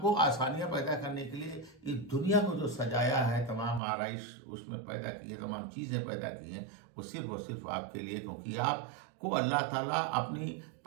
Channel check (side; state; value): left; drops out; at 3.8 s